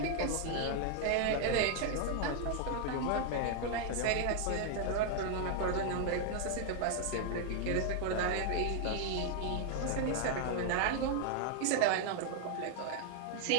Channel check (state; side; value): different; both; correlation 0.00